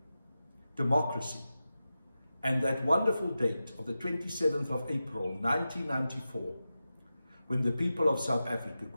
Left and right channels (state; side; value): inverted; both; correlation -0.92